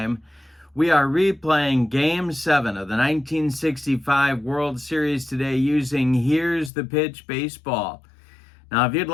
We are replaying Game 7 of the 1965 World Series today using Here's the Pitch Baseball. Now, if you'd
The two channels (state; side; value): drops out; right; at 6.7 s